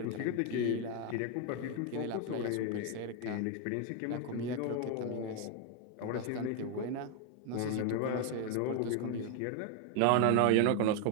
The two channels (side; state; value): both; different; correlation 0.01